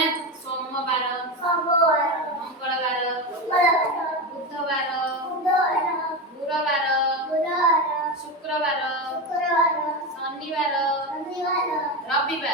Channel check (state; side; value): normal; both; correlation 0.17